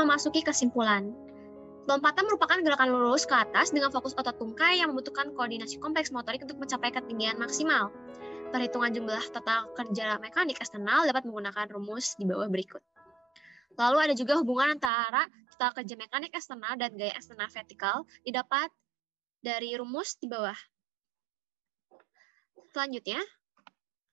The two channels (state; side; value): drops out; left; at 14.9 s